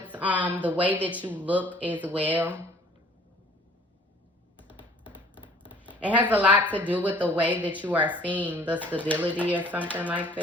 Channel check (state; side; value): normal; both; correlation 0.54